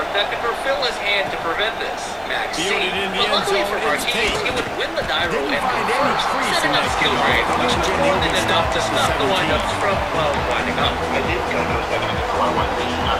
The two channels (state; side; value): identical; both; correlation 1.00